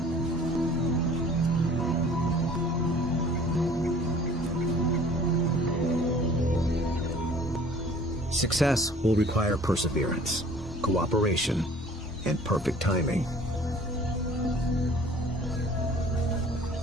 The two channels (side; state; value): both; normal; correlation 0.50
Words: Success will require perseverance, cooperation, and perfect timing.